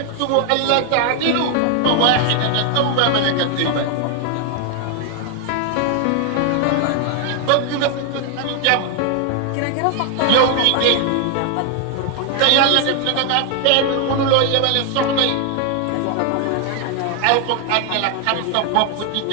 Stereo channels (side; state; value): both; different; correlation 0.00